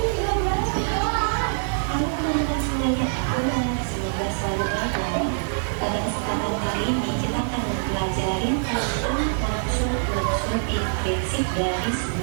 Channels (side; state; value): left; silent; digital silence